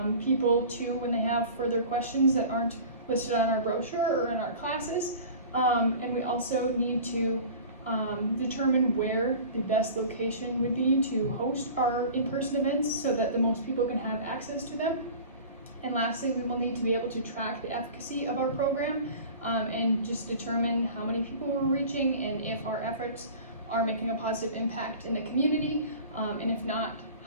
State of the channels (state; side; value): inverted; both; correlation -0.40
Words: people to when they have further questions that aren't listed on our brochure or in our classes. And we also need to determine where the best location would be to host our in-person events so that the most people can have access to them. And lastly, we will need to be able to track the efficacy of our program and just determine how many people we're reaching and if our efforts are making a positive impact in the community, and if not,